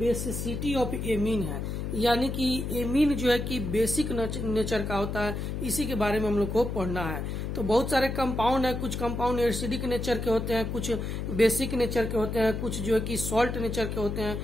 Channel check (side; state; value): left; noise; hum, 4 dB below the sound